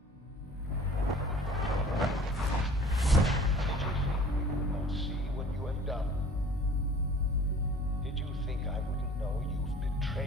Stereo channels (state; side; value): normal; both; correlation 0.48